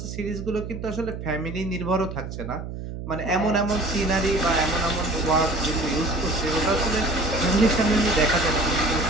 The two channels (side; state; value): right; noise; hum, 8 dB below the sound